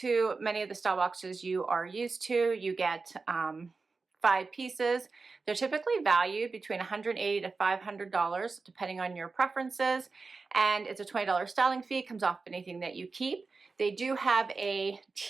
many of the style boxes you are used to. You get 5 pieces. They're typically valued between $180 to $500 depending on your preferences, and it's a $20 styling fee. It comes off anything that you keep. They do have a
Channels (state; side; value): quieter; left; 4.2 dB